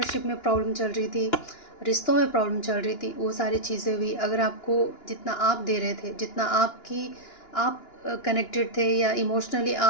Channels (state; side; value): late; right; 2.9 ms